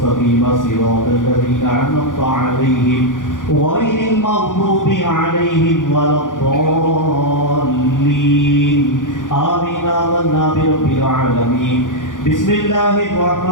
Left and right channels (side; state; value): right; late; 0.88 ms